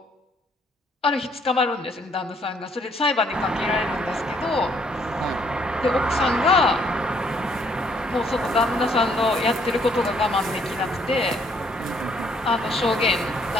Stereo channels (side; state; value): both; normal; correlation 0.67